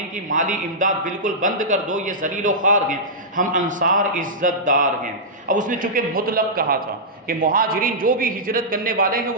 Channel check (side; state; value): both; normal; correlation -0.13